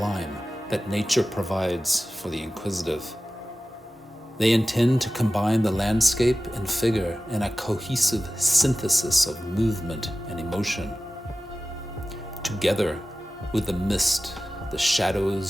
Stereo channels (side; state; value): both; normal; correlation 0.95